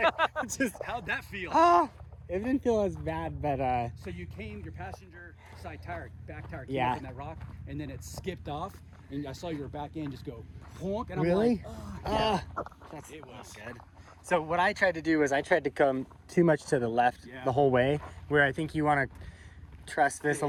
just How'd that feel? ah, It didn't feel as bad, but So you came, your passenger side tire, back tire came Yeah. up in that rock, and then it skipped off, and I saw your back end just go honk, and I'm really? like, oh, yeah. That's It was. not good. So what I tried to do was I tried to come too much to the left Yeah. the whole way, where I think you want to trust this a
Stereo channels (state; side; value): identical; both; correlation 1.00